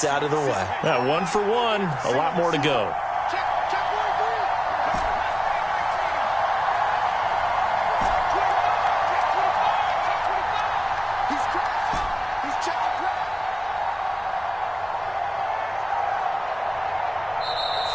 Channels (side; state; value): both; identical; correlation 1.00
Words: out of the way. Yeah, 1 for 1. A lot more to go.